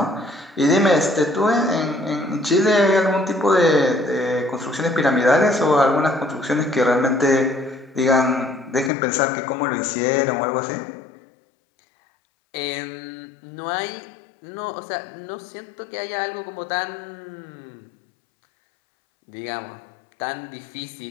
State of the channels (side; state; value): right; drops out; at 8.9 s